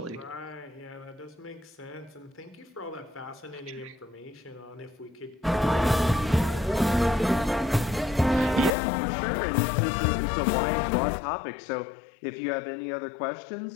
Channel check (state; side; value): drops out; right; at 8.7 s